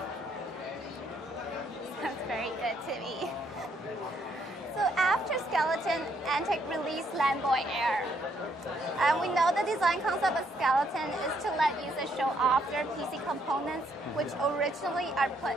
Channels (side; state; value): both; normal; correlation 0.71